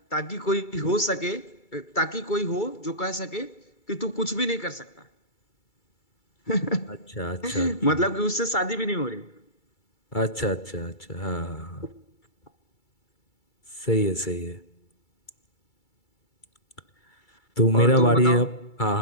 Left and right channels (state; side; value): late; right; 2.3 ms